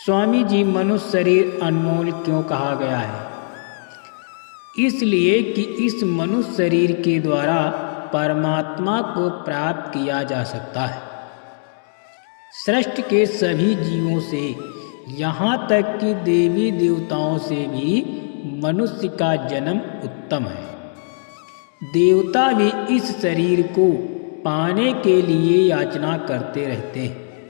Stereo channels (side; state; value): right; silent; digital silence